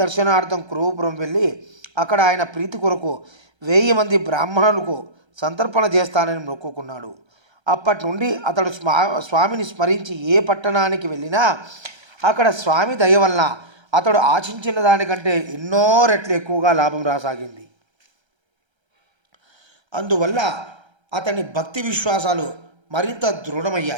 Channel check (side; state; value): left; late; 1.3 ms